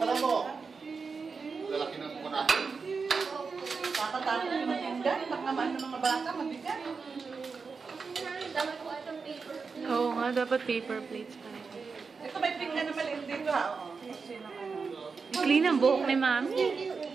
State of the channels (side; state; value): left; quieter; 5.0 dB